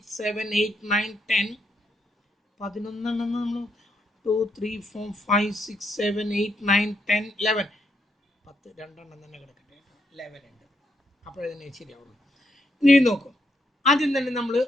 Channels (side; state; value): both; normal; correlation 0.77